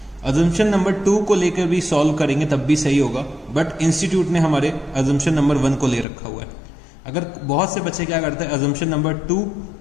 अजम्पशन नंबर 2 को लेकर भी सॉल्व करेंगे तब भी सही होगा, बट इंस्टीट्यूट ने हमारे अजम्पशन नंबर 1 को ले रखा हुआ है। अगर बहुत से बच्चे क्या करते हैं, अजम्पशन नंबर 2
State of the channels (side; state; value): right; drops out; at 6.1 s